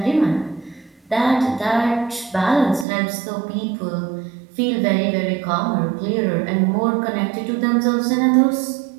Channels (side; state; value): left; drops out; at 2.9 s